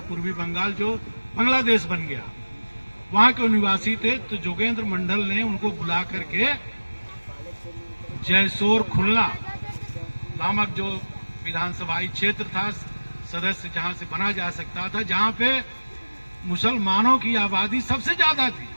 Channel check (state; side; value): inverted; both; correlation -1.00